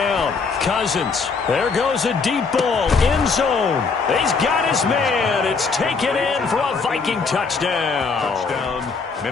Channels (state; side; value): quieter; right; 4.9 dB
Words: Cousins. There goes a deep ball. End zone. He's got his man. It's taken in for a Viking touchdown. Touchdown,